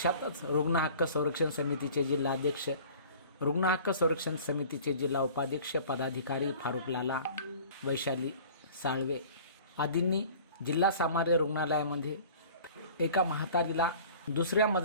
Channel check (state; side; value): inverted; both; correlation -0.46